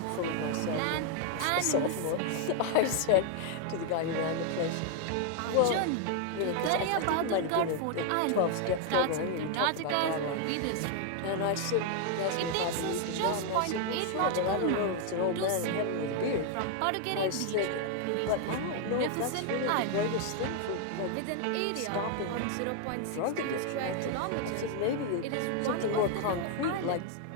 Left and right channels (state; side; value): different; both; correlation 0.00